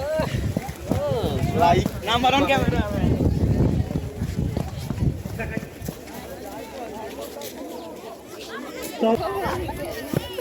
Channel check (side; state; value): both; identical; correlation 1.00